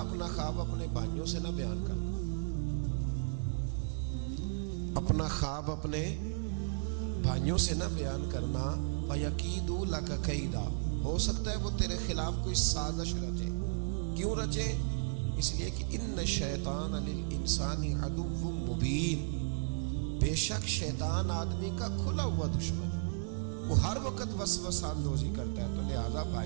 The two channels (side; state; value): left; silent; digital silence